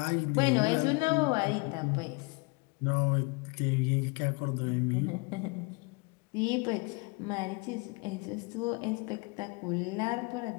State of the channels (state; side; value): quieter; right; 29.3 dB